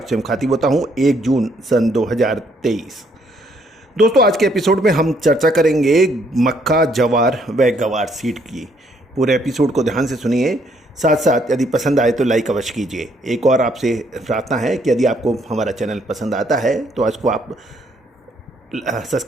मुखातिब होता हूं 1 जून सन 2023। दोस्तों आज के एपिसोड में हम चर्चा करेंगे मक्का, जवार व गवार सीड की। पूरे एपिसोड को ध्यान से सुनिए, साथ साथ यदि पसंद आए तो लाइक अवश्य कीजिए। एक और आपसे प्रार्थना है कि यदि आपको हमारा चैनल पसंद आता है तो आज को आप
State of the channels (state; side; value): normal; both; correlation 0.69